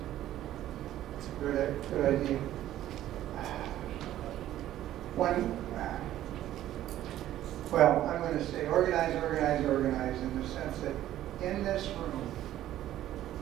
It's a good idea. Well, I'm going to say organize in the sense that in this room,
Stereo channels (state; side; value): quieter; left; 13.0 dB